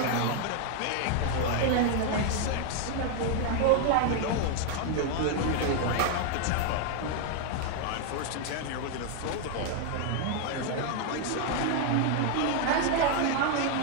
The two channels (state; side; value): different; both; correlation 0.00